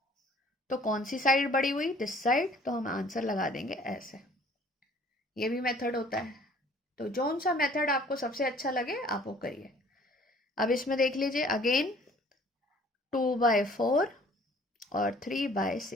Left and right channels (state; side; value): normal; both; correlation 0.54